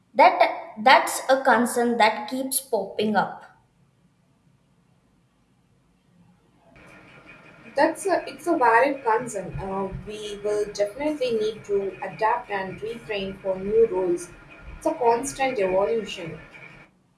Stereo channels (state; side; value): identical; both; correlation 1.00